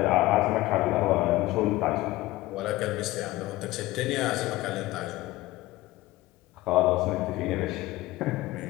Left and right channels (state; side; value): quieter; right; 18.3 dB